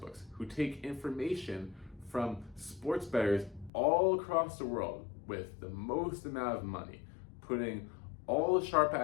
who take information from sports bettors all across the world with the most amount of money, putting all the sharp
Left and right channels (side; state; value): right; drops out; at 3.7 s